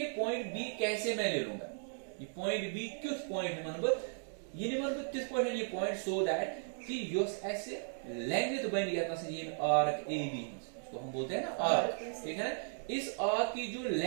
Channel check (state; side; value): silent; left; digital silence